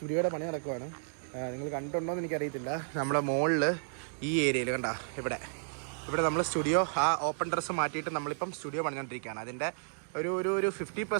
പണി നടക്കുവാണ്. നിങ്ങൾ കണ്ടിട്ടുണ്ടോ എന്ന് എനിക്കറിയത്തില്ല. നമ്മുടെ മുകളിൽ ഈ ഏരിയയിൽ കണ്ട ഇവിടെ നമ്മൾ സ്റ്റുഡിയോ ആ ഓപ്പൺ ഡ്രസ്സ് മാറ്റിയിട്ട് നമ്മളിപ്പം സ്റ്റുഡിയോ പണിഞ്ഞുകൊണ്ടിരിക്കുകയാണ്. അതിൻ്റെ ഒരു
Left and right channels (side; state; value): left; silent; digital silence